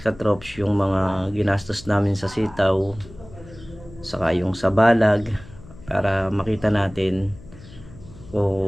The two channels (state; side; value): noise; left; hum, 19 dB below the sound